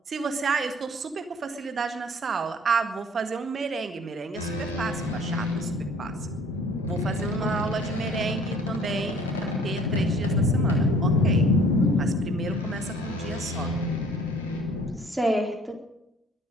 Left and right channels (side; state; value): both; normal; correlation 0.53